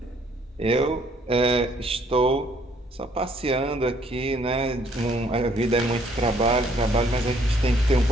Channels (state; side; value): normal; both; correlation 0.64